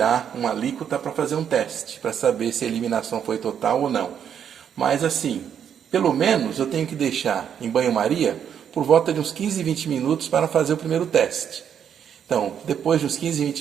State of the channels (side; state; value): left; quieter; 8.5 dB